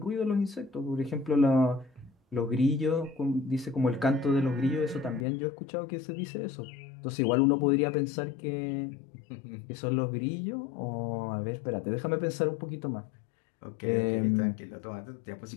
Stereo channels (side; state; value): right; drops out; at 5.2 s